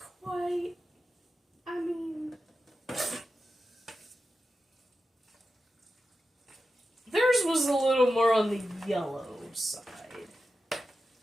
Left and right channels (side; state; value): both; normal; correlation 0.91